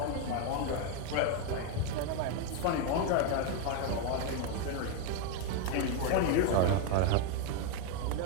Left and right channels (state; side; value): different; both; correlation 0.01